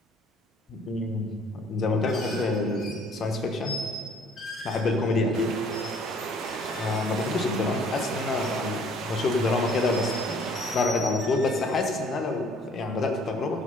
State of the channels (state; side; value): normal; both; correlation 0.57